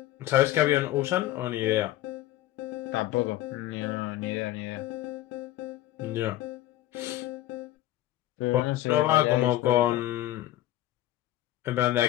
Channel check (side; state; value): right; quieter; 14.8 dB